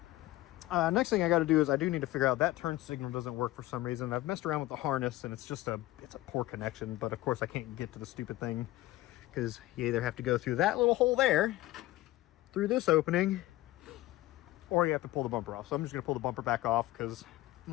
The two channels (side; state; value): right; quieter; 17.0 dB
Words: Next thing I got to do is I do need to figure out that turn signal doesn't work for some reason. I've messed around with the harness and it's a poor connection, but of course I can't get to the stupid thing because you either have to go through that little hole there, through this opening, or you have to pull the bumper off. So I'm just gonna pull the bumper back off because